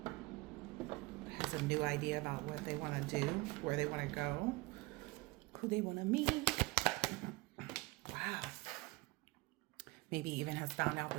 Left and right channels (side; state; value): left; quieter; 23.1 dB